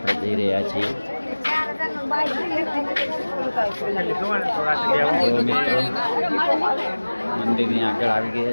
જઈ રહ્યા છીએ. મંદિરની આગળ આવી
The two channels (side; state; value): both; inverted; correlation -1.00